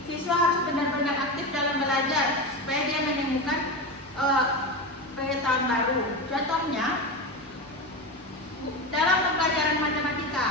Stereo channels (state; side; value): normal; both; correlation 0.20